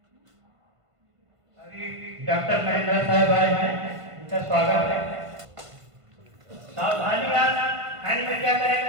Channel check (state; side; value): late; left; 1.5 ms